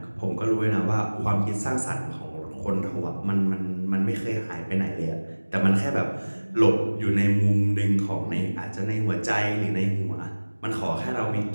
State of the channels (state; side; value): inverted; both; correlation -1.00